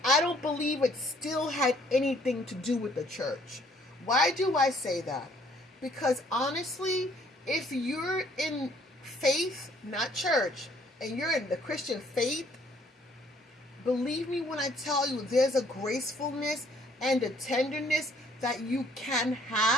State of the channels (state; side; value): normal; both; correlation 0.62